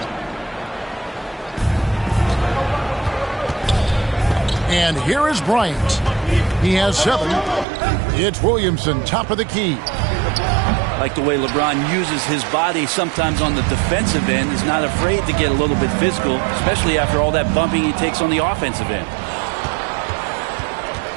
And here is Bryant. He has 7. It's Williamson, top of the key. Like the way LeBron uses his body sometimes on the defensive end. He's not afraid to get a little bit physical, especially after all that bumping he takes on the offensive end.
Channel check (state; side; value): drops out; left; at 7.7 s